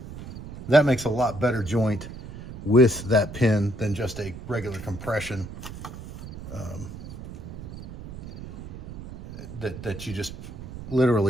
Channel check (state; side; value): noise; right; rumble, 11 dB below the sound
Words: that makes a lot better joint with that pin than just a regular compression that you just